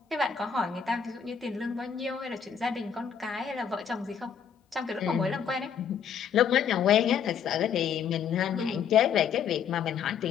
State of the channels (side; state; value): right; quieter; 7.6 dB